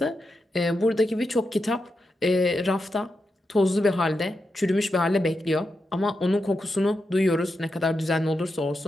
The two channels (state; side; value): normal; both; correlation 0.87